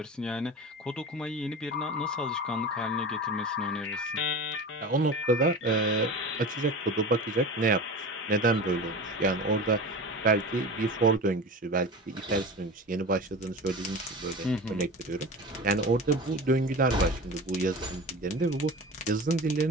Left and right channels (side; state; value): both; normal; correlation 0.32